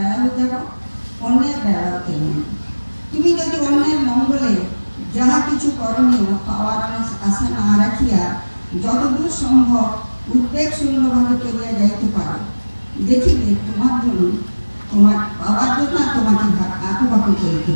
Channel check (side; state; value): both; inverted; correlation -1.00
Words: যেমন, অন্যের বেড়াও তেমন। তুমি যদি অন্যের মঙ্গলে যাহা কিছু করণীয় পাওয়ার আশা না রাখিয়া যতদূর সম্ভব উদ্বেগ শূন্যভাবে করিয়া যাইতে পারো, দেখিবে তোমার জন্য, তোমার পাওয়ার জন্য তোমাকে আঁকুবাকু করিতে